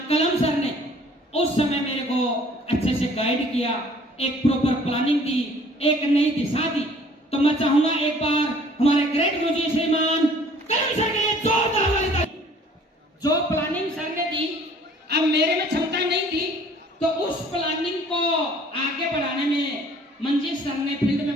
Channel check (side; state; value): both; normal; correlation 0.54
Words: कलम सर ने उस समय मेरे को अच्छे से गाइड किया, एक प्रॉपर प्लानिंग दी, एक नई दिशा दी। तो मैं चाहूंगा एक बार हमारे ग्रेट गुरुजी श्रीमान कलम सर के लिए जोरदार वाली ताली। जो प्लानिंग सर ने दी, अब मेरे में क्षमता नहीं थी, तो उस प्लानिंग को आगे बढ़ाने में मंजीत सर ने फील्ड